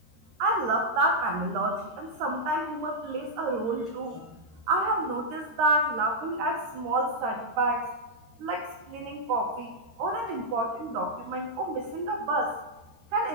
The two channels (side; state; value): left; late; 13 ms